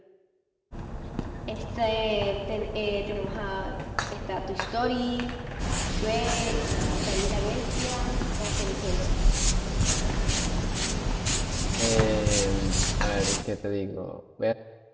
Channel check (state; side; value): identical; both; correlation 1.00